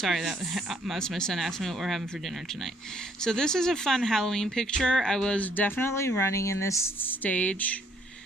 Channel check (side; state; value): both; normal; correlation 0.66